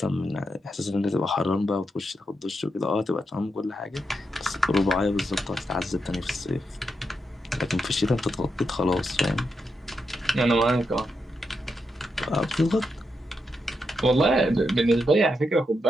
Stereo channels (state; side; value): normal; both; correlation 0.84